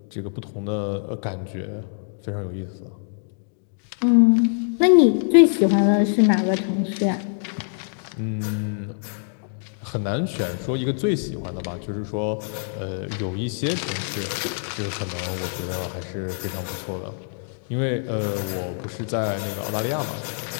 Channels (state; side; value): silent; right; digital silence